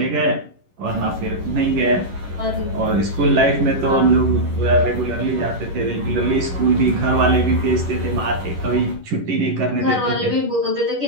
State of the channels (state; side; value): late; left; 11 ms